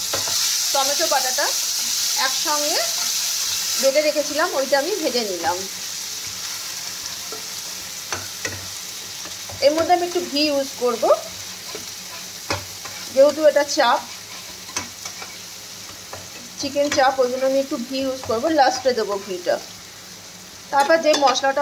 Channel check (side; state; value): both; identical; correlation 1.00